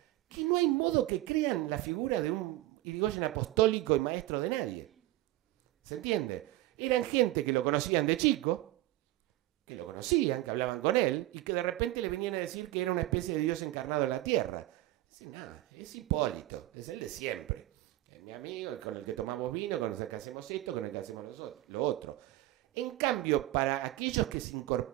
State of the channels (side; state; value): left; quieter; 16.6 dB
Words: que no hay modo que crean la figura de un Irigoyen apostólico y maestro de nadie. ¿Se entiende? Eran gente que lo conocían de chico, que lo conocían, que hablaban con él, y que de repente le venían a decir que era una especie de Dios encarnado en la tierra. Dice, nada, es Hipólito, es el de siempre. Es mi amigo, con el que tomamos vino, con el que hacemos esto, con el que hacemos lo otro. En cambio, para aquellos que se